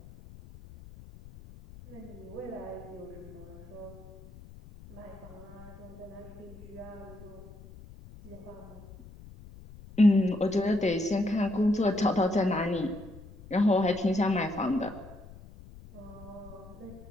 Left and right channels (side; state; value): left; noise; rumble, 18 dB below the sound